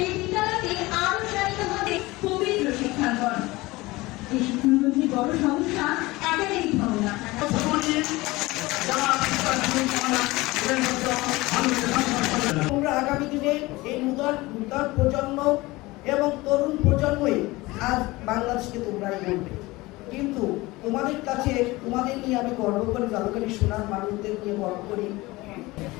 এই বিদ্যালয়তে আরো চালিত হবে পবিত্র শিক্ষাঙ্গন। এই শিক্ষাঙ্গনের বড় সমস্যা একাডেমিক ভবনা। তোমরা আগামী দিনে এই নূতন প্রজন্ম এবং তরুণ প্রজন্মই আজ বাংলাদেশকে তোমরাই বলবে, কিন্তু তোমাদের কাছে তোমাদের নিয়ে আমি গর্ব করি, জাদুকারী সোনার মানুষদের নিয়ে গর্ব করি।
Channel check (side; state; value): right; quieter; 20.9 dB